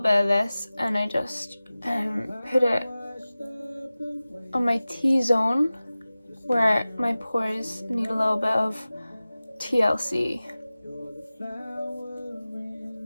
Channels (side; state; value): both; inverted; correlation -0.97